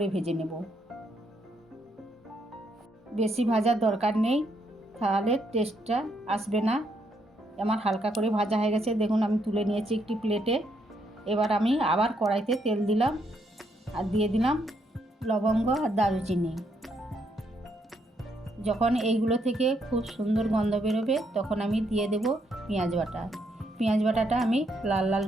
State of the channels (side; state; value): both; normal; correlation 0.75